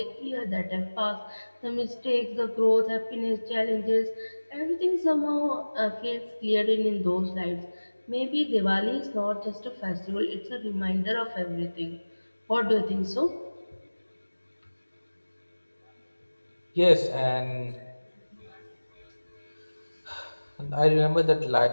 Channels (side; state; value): both; inverted; correlation -1.00